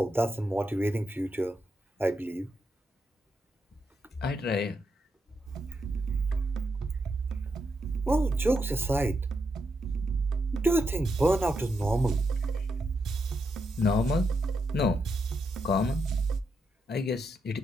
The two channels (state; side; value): normal; both; correlation 0.83